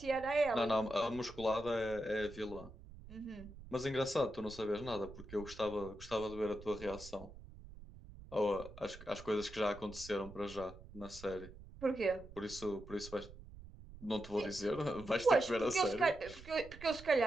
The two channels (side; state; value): right; noise; rumble, 16 dB below the sound